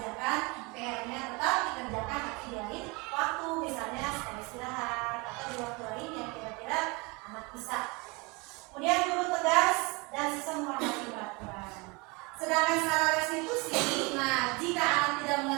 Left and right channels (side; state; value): left; quieter; 27.5 dB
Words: PR-nya tetap dikerjakan tapi di lain waktu, misalnya setelah istirahat atau di waktu lain yang kira-kira anak bisa. Kemudian guru tegas dan siswa menghormati peraturan. Sedangkan secara restitusi, nah jika anak tidak